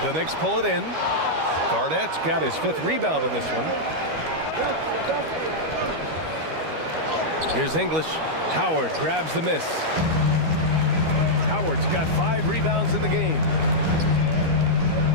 The Knicks pull it in. Garnett's got his 5th rebound in this one. Here's English. Howard grabs the miss. Howard's got 5 rebounds in the game.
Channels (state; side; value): late; left; 13 ms